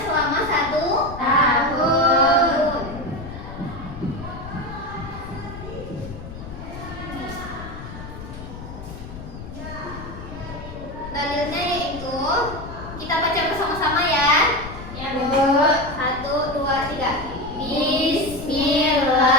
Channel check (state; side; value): noise; left; rumble, 12 dB below the sound